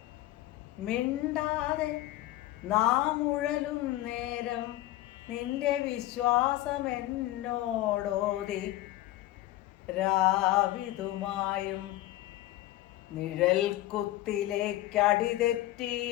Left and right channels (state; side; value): quieter; right; 15.8 dB